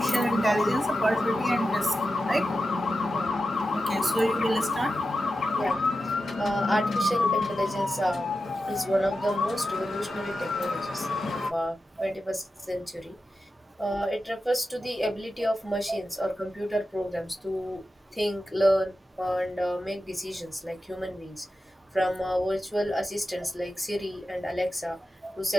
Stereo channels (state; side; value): normal; both; correlation 0.91